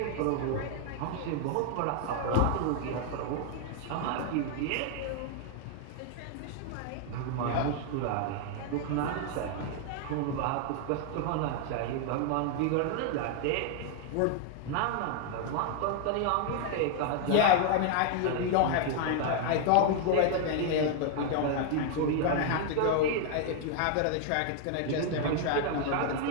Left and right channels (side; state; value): both; different; correlation 0.00